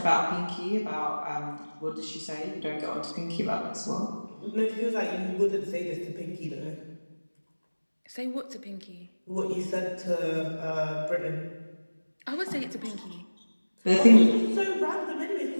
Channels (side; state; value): both; inverted; correlation -1.00